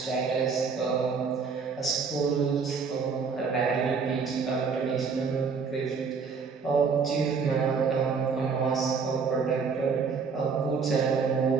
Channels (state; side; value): quieter; left; 5.4 dB